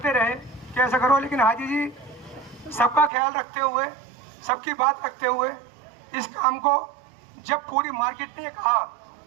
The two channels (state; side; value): drops out; left; at 3.1 s